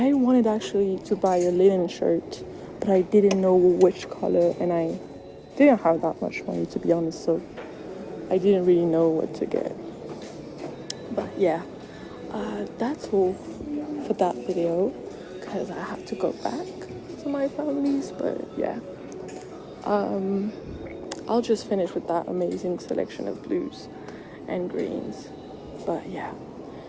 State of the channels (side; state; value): both; identical; correlation 1.00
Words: wanted actually to buy a linen shirt, but I didn't know which color, and I didn't have that much money, to be honest, so I didn't really know what to get. But yeah, that's all for that video, because I have to go back to my family's. But yeah, I'll just finish with that amazing selection of blues and greens. But yeah,